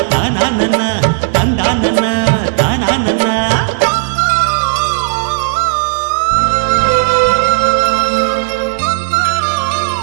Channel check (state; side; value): silent; left; digital silence